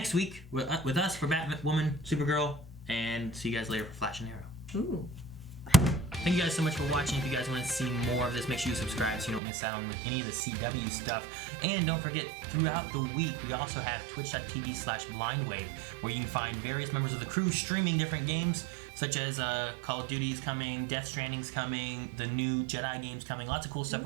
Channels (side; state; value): left; drops out; at 9.4 s